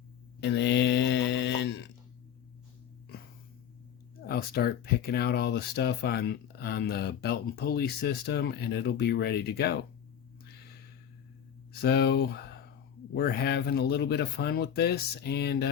and then I'll start picking out all the stuff on the belt and pulley system, and it'll be ready to go. So we're having a little bit of fun with this, and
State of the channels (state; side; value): quieter; right; 8.9 dB